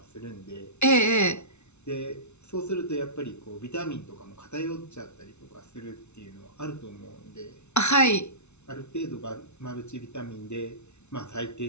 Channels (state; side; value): late; right; 0.82 ms